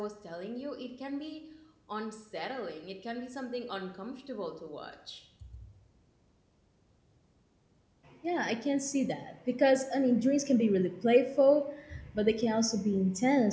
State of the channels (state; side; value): identical; both; correlation 1.00